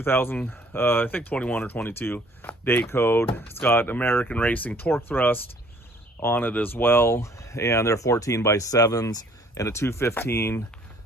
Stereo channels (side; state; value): both; normal; correlation 0.58